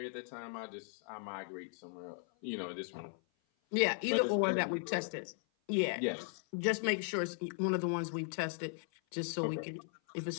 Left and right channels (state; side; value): silent; right; 53 dB below the other